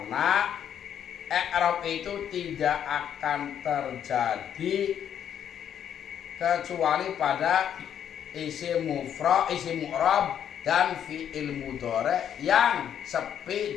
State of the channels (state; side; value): quieter; right; 9.3 dB